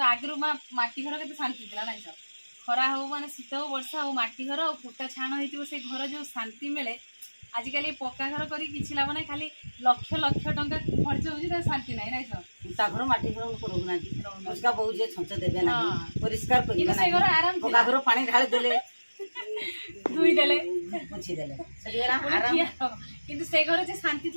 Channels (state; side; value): inverted; both; correlation -1.00